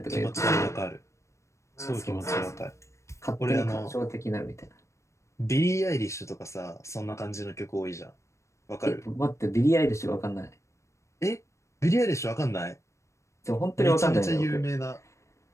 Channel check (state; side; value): late; right; 0.14 ms